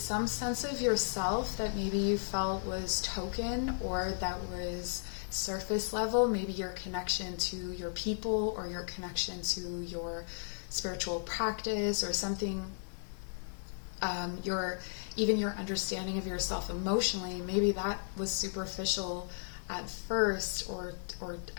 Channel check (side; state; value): right; silent; 54 dB below the other